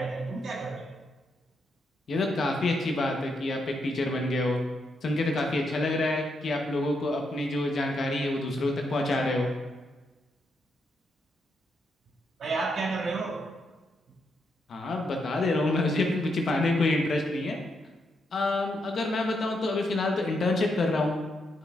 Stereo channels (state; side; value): normal; both; correlation 0.80